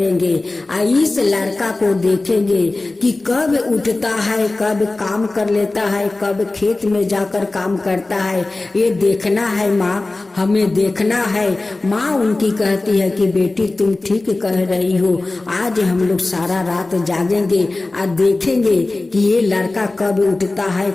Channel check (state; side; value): quieter; right; 3.1 dB